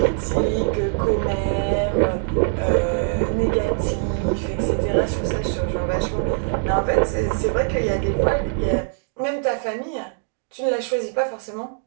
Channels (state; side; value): silent; left; 64 dB below the other